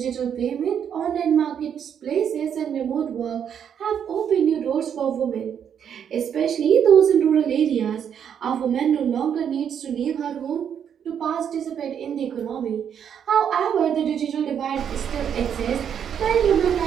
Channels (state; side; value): quieter; left; 8.3 dB